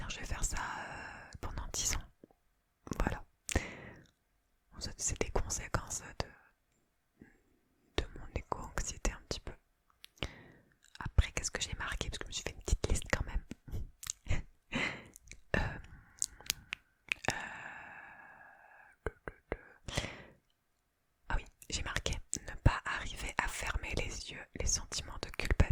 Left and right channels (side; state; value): both; identical; correlation 1.00